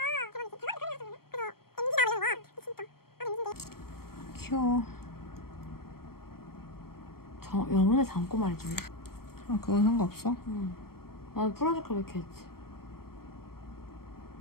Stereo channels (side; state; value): right; late; 0.94 ms